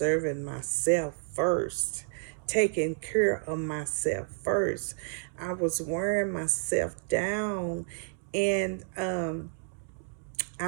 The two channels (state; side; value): silent; left; digital silence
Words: myself first, taking care of myself first. I was wearing myself down, and